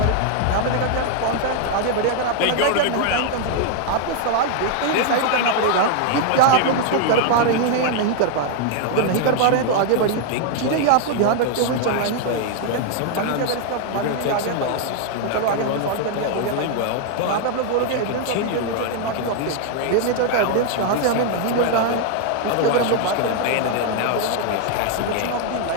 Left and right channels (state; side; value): different; both; correlation 0.00